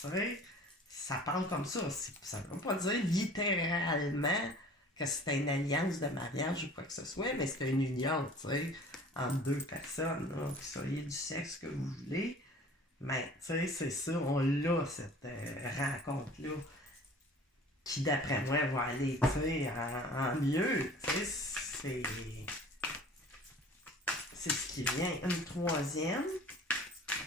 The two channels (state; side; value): normal; both; correlation 0.46